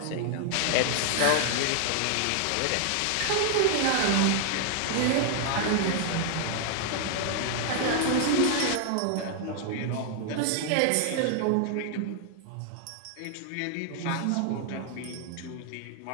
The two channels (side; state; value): both; different; correlation 0.00